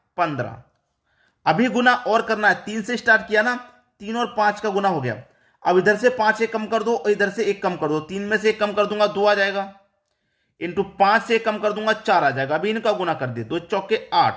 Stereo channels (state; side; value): identical; both; correlation 1.00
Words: 15। अभी गुना और करना है, 3 से स्टार्ट किया ना, 3 और 5 का गुना हो गया। अब इधर से 5 एक कम कर दो और इधर से 1 कम कर दो, 3 में से 1 कम कर दूंगा 2 आ जाएगा। इंटू 5 से कम कर दूंगा 4 आ जाएगा। अभी इनका गुना कर दिए, 2 चौके